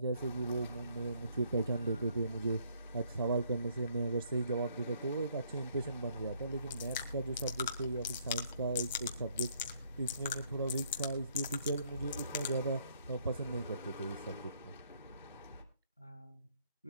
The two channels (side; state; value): both; inverted; correlation -0.65